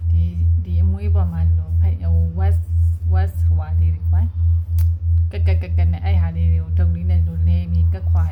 ဒီအမွေးပေါ်မှာလို့west ဟွာလေးတွေပိုင်းကနဲ့အဲ့ဟာလေးတွေကိုဒုံလေးနဲ့လို့လဲပြီးကက်ခွာ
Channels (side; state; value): both; identical; correlation 1.00